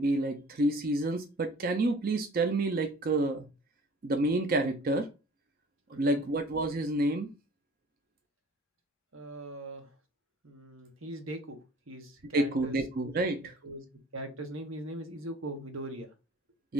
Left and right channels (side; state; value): both; normal; correlation 0.49